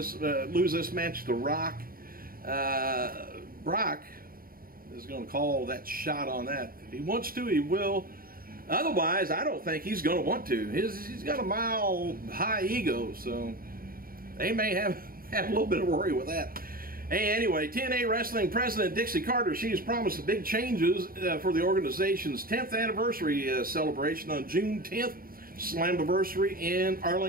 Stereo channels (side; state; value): left; late; 0.42 ms